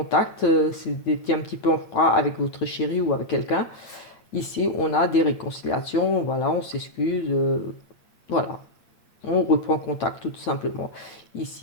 c'est un petit peu en froid avec votre chéri ou avec quelqu'un. Ici, on a des réconciliations, voilà, on s'excuse, voilà, on reprend contact tout simplement.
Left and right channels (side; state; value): right; late; 8.6 ms